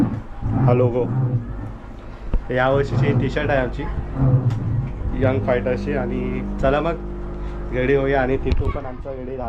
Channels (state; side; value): identical; both; correlation 1.00